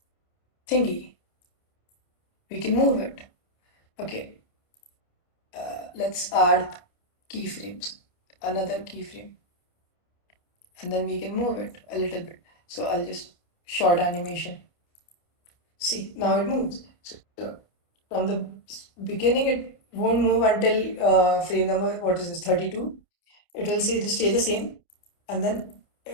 thingy. We can move it. Okay, let's add keyframes, another keyframe, and then we can move it a little bit. So I'll just short animation. See, now it moves. So from the beginning, it won't move until frame number, what is this, 32. It will stay the same, and then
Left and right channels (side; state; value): right; late; 28 ms